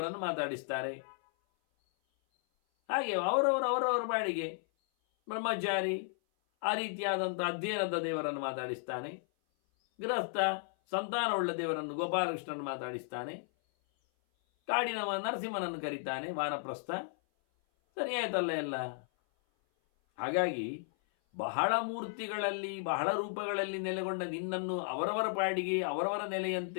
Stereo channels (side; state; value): right; silent; 55 dB below the other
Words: ಮಾತಾಡಿಸ್ತಾರೆ. ಹಾಗೆ ಅವರವರ ಬಾಡಿಗೆ ಬ್ರಹ್ಮಚಾರಿ ಆ ರೀತಿಯಾದಂಥ ಅಧ್ಯಯನದ ದೇವರನ್ನು ಮಾತಾಡಿಸ್ತಾನೆ. ಗೃಹಸ್ಥ ಸಂತಾನವುಳ್ಳ ದೇವರನ್ನು ಗೋಪಾಲಕೃಷ್ಣನನ್ನು ಮಾತಾಡಿಸ್ತಾನೆ. ಕಾಡಿನವ ನರಸಿಂಹನನ್ನು ಕರೀತಾನೆ, ವಾನಪ್ರಸ್ಥ. ಸರಿಯಾಯ್ತಲ್ಲ ಎಲ್ಲ. ಹಾಗಾಗಿ ಬಹಳ ಮೂರ್ತಿಗಳಲ್ಲಿ, ಬಹಳ ರೂಪಗಳಲ್ಲಿ ನೆಲೆಗೊಂಡ ನಿನ್ನನ್ನು ಅವರವರ ಪಾಡಿಗೆ ಅವರವರ